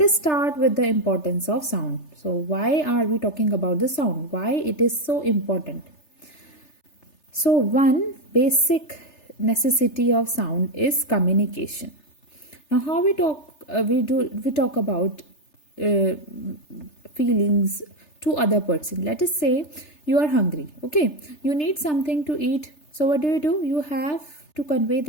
start with the importance of sound. So why are we talking about the sound? Why it is so important? So one basic necessity of sound is communication. Now how we talk we talk about feelings to other person. Let us say you are hungry. Okay, you need something to eat. So what do? You have to convey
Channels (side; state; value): right; late; 3.3 ms